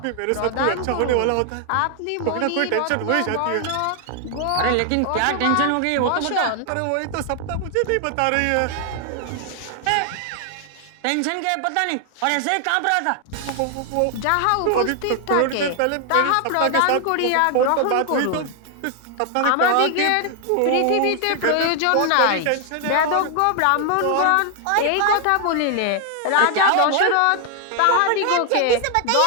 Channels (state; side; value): different; both; correlation 0.00